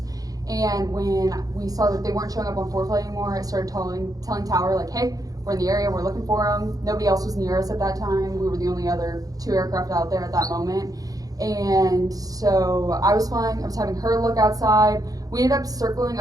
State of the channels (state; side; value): late; left; 0.18 ms